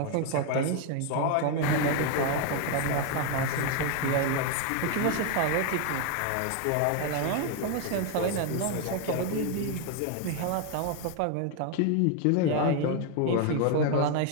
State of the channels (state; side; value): different; both; correlation 0.01